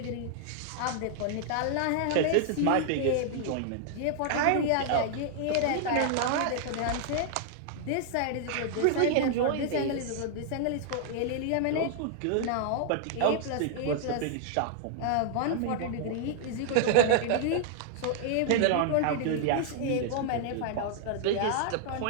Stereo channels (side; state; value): both; different; correlation -0.01